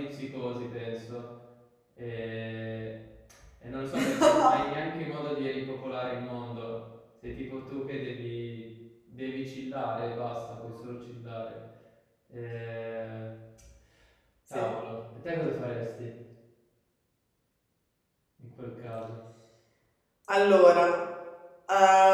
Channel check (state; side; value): identical; both; correlation 1.00